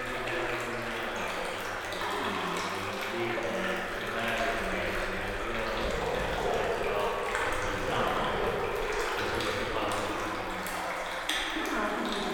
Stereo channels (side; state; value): both; identical; correlation 1.00